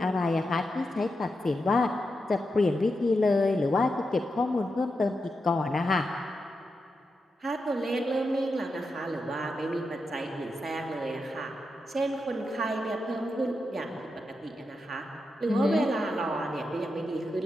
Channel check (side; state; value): both; normal; correlation 0.87